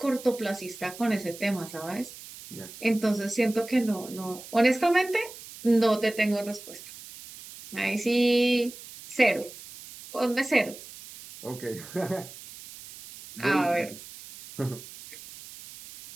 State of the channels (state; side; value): noise; right; hiss, 16 dB below the sound